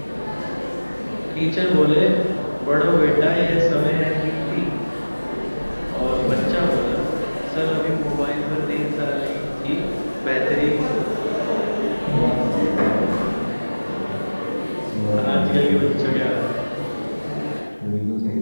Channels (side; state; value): both; inverted; correlation -1.00